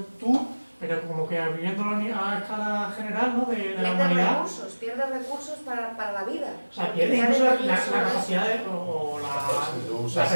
tú, pero como que viviéndolo a escala general, ¿no? De la humanidad. Pierdes recursos para la vida. O sea, pierdes Ya incluso de la niños son capacidad eso. o Si tú la usas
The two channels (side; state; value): both; inverted; correlation -1.00